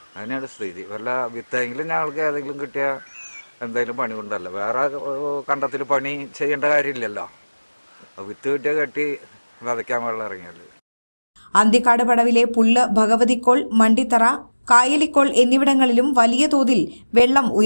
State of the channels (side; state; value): both; inverted; correlation -1.00